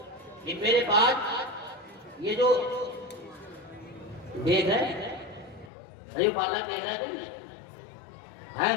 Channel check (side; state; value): right; drops out; at 5.7 s